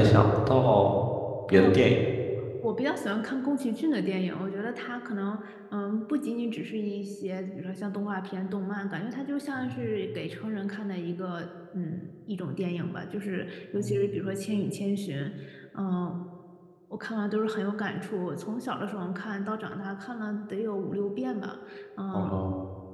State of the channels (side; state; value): both; identical; correlation 1.00